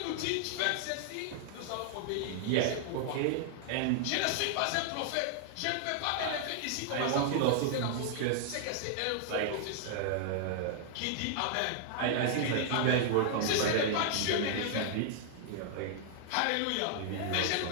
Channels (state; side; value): different; both; correlation -0.01